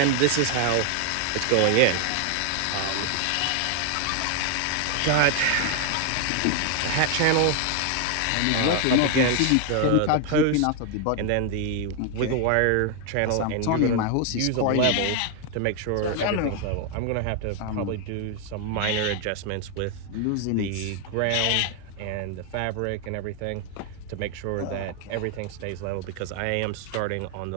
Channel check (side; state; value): both; different; correlation 0.00